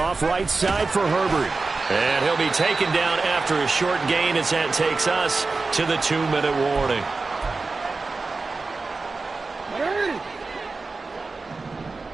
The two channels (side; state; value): left; quieter; 3.9 dB